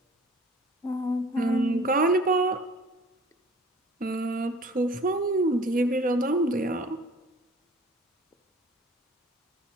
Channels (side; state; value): both; normal; correlation 0.49